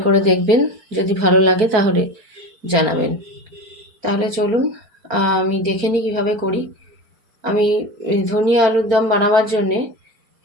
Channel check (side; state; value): left; late; 4.5 ms